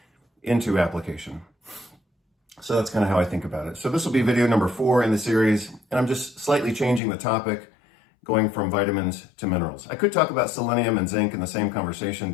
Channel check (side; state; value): right; drops out; at 7.0 s